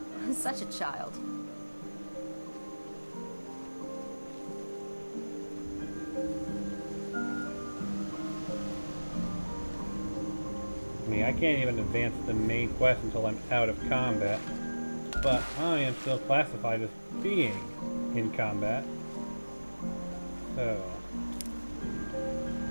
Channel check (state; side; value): inverted; both; correlation -1.00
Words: Such a child. I mean, I can't even advance the main quest until I'm out of combat. But I am still classified as being in combat. So...